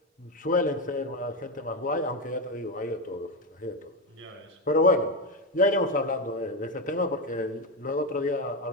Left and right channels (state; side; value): normal; both; correlation 0.11